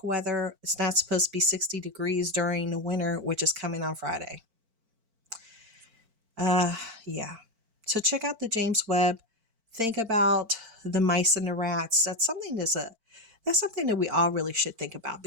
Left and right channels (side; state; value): left; late; 4.5 ms